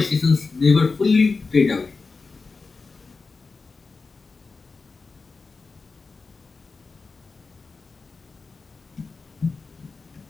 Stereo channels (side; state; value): right; quieter; 4.3 dB